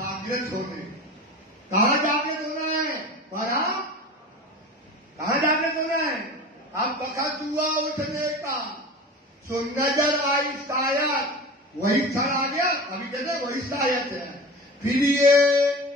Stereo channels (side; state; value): both; normal; correlation 0.34